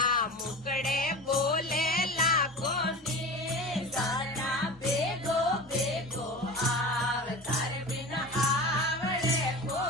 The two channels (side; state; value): both; normal; correlation 0.32